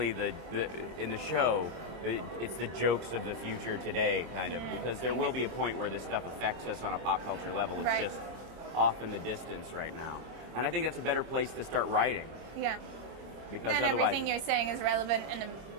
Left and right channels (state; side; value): late; left; 26 ms